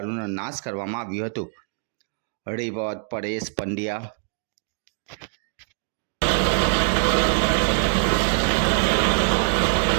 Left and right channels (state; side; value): silent; left; digital silence